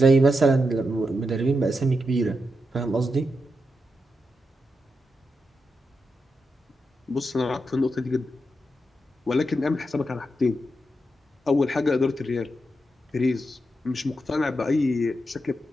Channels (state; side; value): normal; both; correlation 0.86